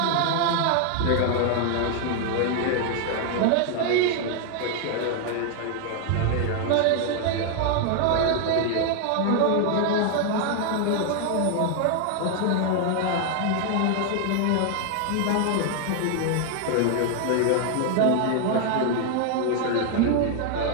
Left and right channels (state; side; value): different; both; correlation 0.00